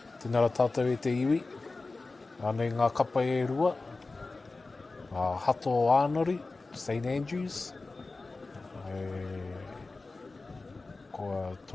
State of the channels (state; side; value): quieter; right; 3.5 dB